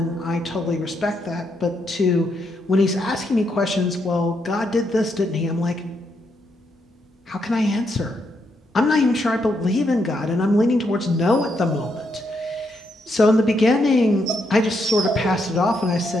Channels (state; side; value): normal; both; correlation 0.78